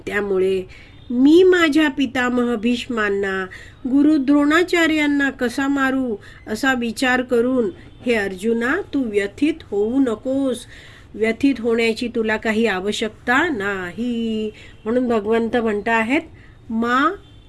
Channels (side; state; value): both; identical; correlation 1.00